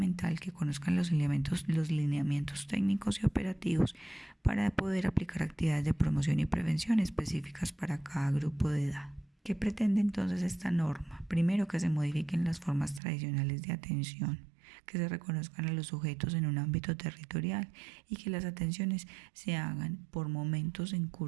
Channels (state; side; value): drops out; left; at 13.0 s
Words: que conozcan los lineamientos técnicos y operativos para poder aplicar actividades de promoción y prevención específicas para cada grupo de edad. ¿Qué pretende entonces esta norma? Primero, que se modifiquen las formas tradicionales de atención. que se reconozcan a los sujetos en un ámbito territorial y que las atenciones se hagan por momentos en